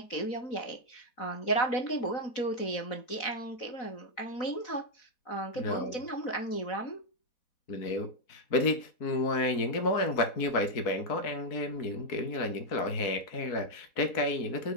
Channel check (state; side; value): late; right; 4.1 ms